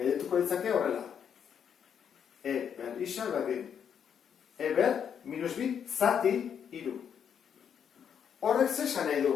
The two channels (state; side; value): quieter; right; 8.0 dB